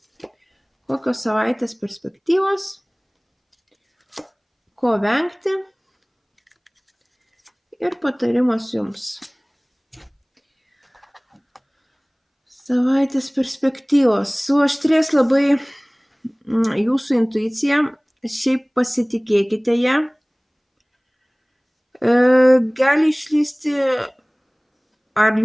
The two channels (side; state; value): both; identical; correlation 1.00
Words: Kokios savaitės perspektyvos, ko vengti ir patarimas jums. Savaitės perspektyvos. Suaštrės labai jūsų intuicija, šiaip pasitikėkite ją. Gali išlįsti ar